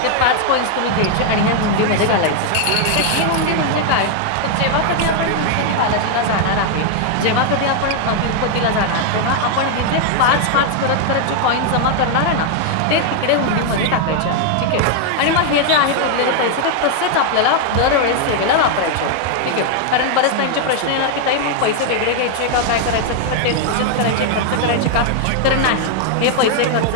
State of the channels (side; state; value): both; different; correlation 0.00